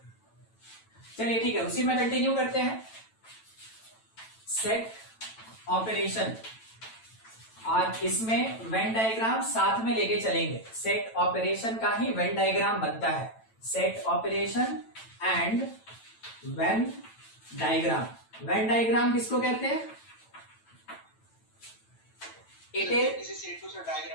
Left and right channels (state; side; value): late; right; 9.0 ms